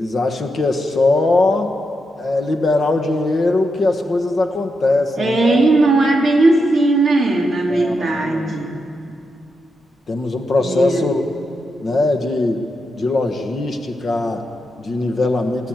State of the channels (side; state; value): both; normal; correlation 0.84